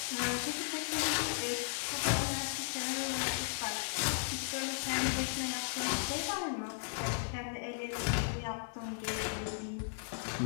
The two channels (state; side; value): silent; right; 54 dB below the other